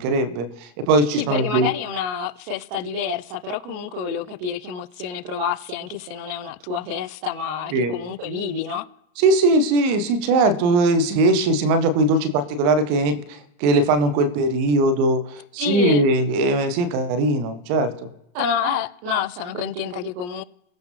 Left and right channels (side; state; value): left; late; 34 ms